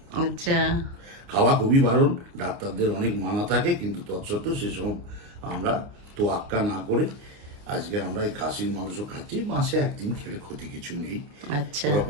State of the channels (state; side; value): late; left; 29 ms